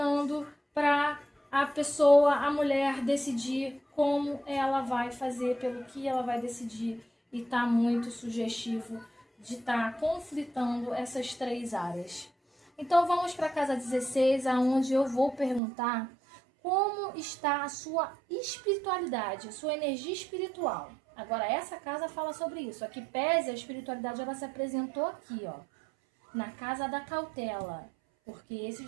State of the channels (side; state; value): left; drops out; at 15.6 s